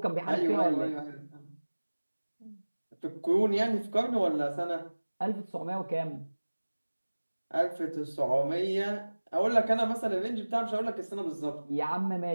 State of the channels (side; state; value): both; inverted; correlation -1.00